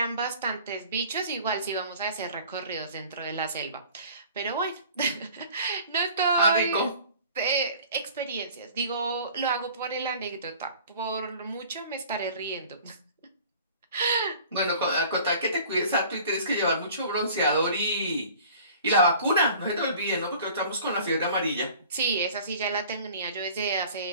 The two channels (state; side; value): inverted; both; correlation -0.47